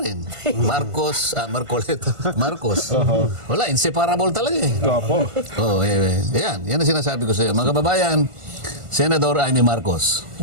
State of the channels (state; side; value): late; left; 1.4 ms